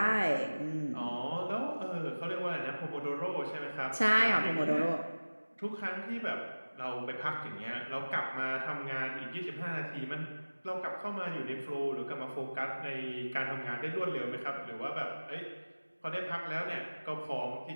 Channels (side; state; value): both; inverted; correlation -1.00